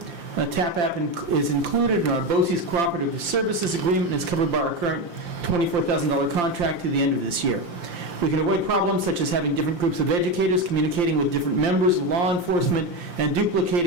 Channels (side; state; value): left; late; 5.8 ms